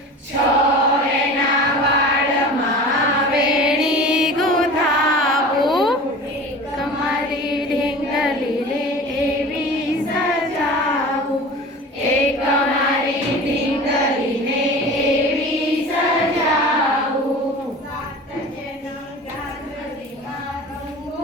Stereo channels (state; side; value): normal; both; correlation 0.37